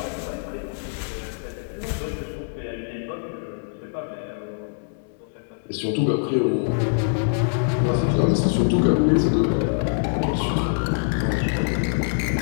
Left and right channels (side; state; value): right; silent; digital silence